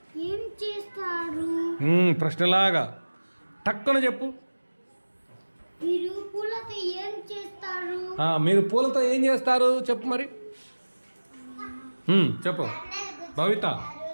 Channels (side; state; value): both; inverted; correlation -1.00